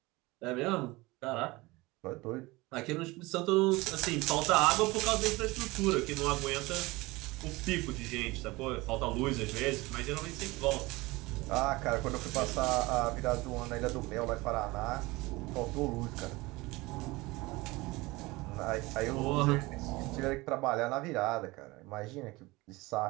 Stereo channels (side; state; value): left; quieter; 22.0 dB